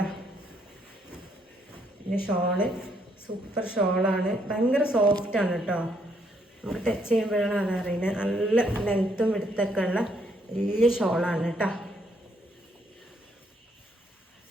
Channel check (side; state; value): both; normal; correlation 0.72